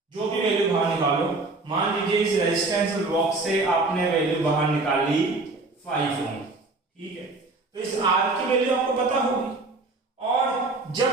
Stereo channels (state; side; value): quieter; left; 3.4 dB